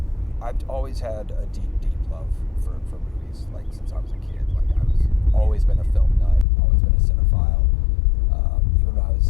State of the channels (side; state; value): right; drops out; at 6.5 s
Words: always had a deep love for movies, since I was a kid. I've always been a film nut, always been a cinephile. Even when I